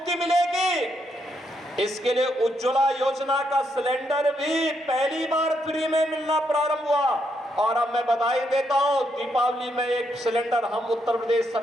मिलेगी, इसके लिए उज्ज्वला योजना का सिलेंडर भी पहली बार फ्री में मिलना प्रारंभ हुआ। और अब मैं बधाई देता हूं, दीपावली में एक सिलेंडर हम उत्तर प्रदेश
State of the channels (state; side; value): normal; both; correlation 0.78